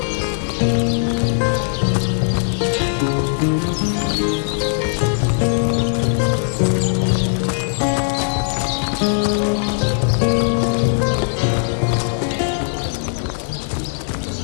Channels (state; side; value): silent; right; 66 dB below the other